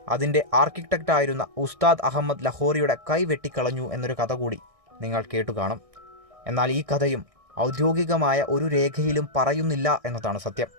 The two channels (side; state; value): left; late; 1.6 ms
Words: അതിൻ്റെ ആർക്കിടെക്റ്റായിരുന്ന ഉസ്താദ് അഹമ്മദ് ലഹോറിയുടെ കൈ വെട്ടിക്കളഞ്ഞു എന്നൊരു കഥ കൂടി നിങ്ങൾ കേട്ടുകാണും. എന്നാൽ ഈ കഥയും ഔദ്യോഗികമായ ഒരു രേഖയിലും പറയുന്നില്ല എന്നതാണ് സത്യം.